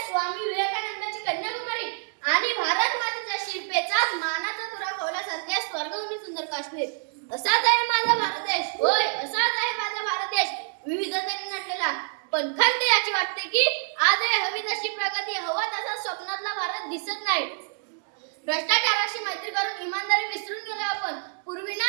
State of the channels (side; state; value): left; silent; digital silence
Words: स्वामी विवेकानंदाची कन्याकुमारी आणि भारत मातेच्या शिल्पेचाच मानाचा तुरा खोवल्यासारख्या स्वर्गभूमी सुंदर काश्मीर। असाच आहे माझा भारत देश, होय असाच आहे माझा भारत देश, विविधतेने नटलेला। पण खंत याची वाटते की आज हवी तशी प्रगती, हवा तसा स्वप्नातला भारत दिसत नाही। भ्रष्टाचाराशी मैत्री करून इमानदारी विसरून गेलो आपण। पूर्वी